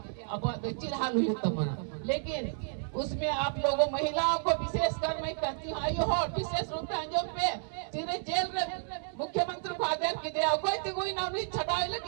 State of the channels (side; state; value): left; silent; digital silence